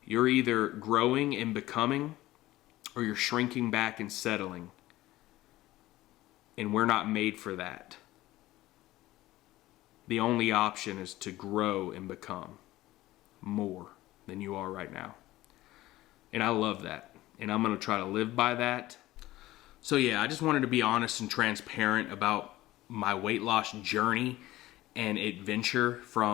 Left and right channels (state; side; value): quieter; right; 16.8 dB